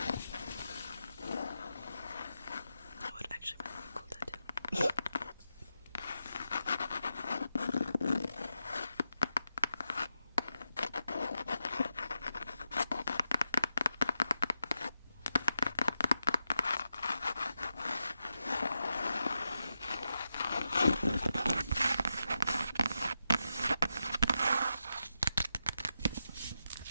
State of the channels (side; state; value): both; inverted; correlation -0.88